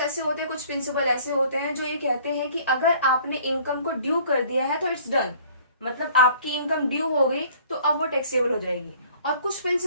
होते हैं, कुछ प्रिंसिपल ऐसे होते हैं जो ये कहते हैं कि अगर आपने इनकम को ड्यू कर दिया है तो इट्स डन, मतलब आपकी इनकम ड्यू हो गई तो अब वो टैक्सेबल हो जाएगी। और कुछ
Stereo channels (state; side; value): inverted; both; correlation -0.54